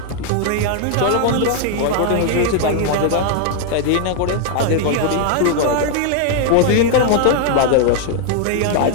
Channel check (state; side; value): different; both; correlation 0.00